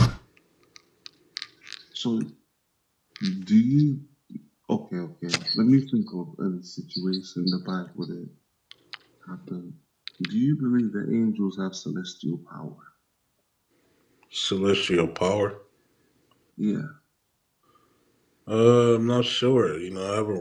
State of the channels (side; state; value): both; identical; correlation 1.00